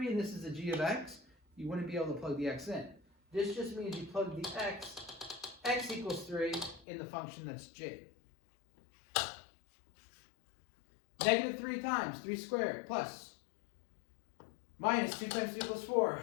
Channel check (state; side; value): drops out; right; at 6.9 s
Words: and this is a g of x, you wouldn't be able to plug the x in. This just means you plug the x equals 3 in the function that's g. Negative 3 times 3 squared plus minus 2 times 3 equals 4.